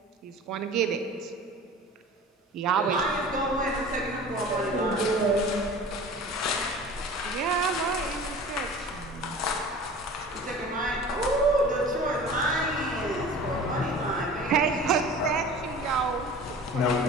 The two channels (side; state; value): both; normal; correlation 0.40